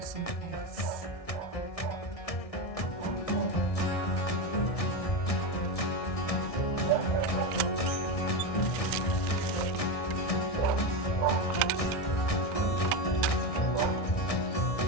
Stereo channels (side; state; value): right; late; 1.6 ms